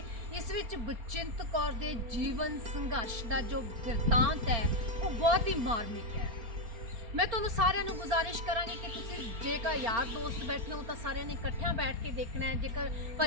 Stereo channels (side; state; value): left; late; 4.3 ms